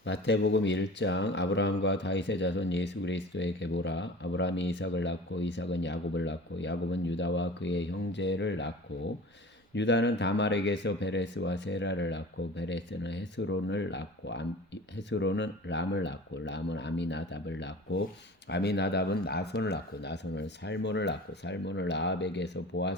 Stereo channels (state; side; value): normal; both; correlation 0.39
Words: 마태복음 1장 아브라함과 다윗의 자손 예수 그리스도의 계보라. 아브라함이 이삭을 낳고 이삭은 야곱을 낳고 야곱은 유다와 그의 형제를 낳고 유다는 다말에게서 베레스와 세라를 낳고 베레스는 헤스론을 낳고 헤스론은 람을 낳고 람은 아미나답을 낳고 아미나답은 나손을 낳고 나손은 살몬을 낳고 살몬은 라합에게서